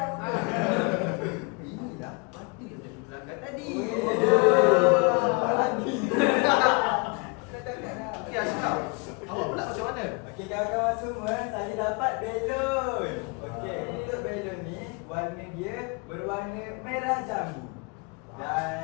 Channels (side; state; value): right; quieter; 31.1 dB